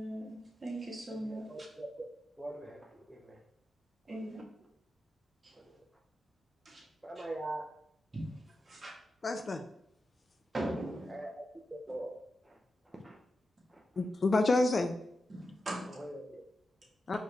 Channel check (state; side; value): normal; both; correlation 0.90